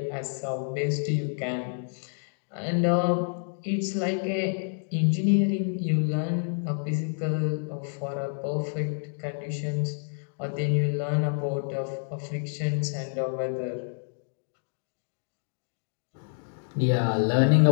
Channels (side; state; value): right; silent; digital silence